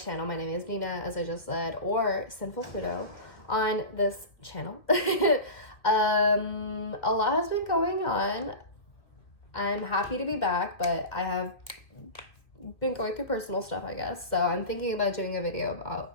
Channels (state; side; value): late; right; 1.9 ms